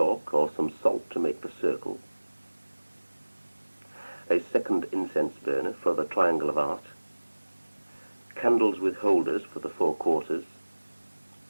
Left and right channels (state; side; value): inverted; both; correlation -1.00